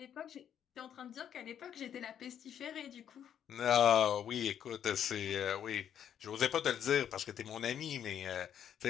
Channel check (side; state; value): right; quieter; 9.3 dB